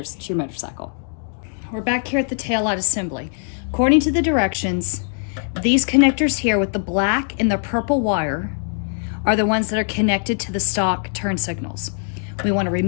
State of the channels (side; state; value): right; silent; 57 dB below the other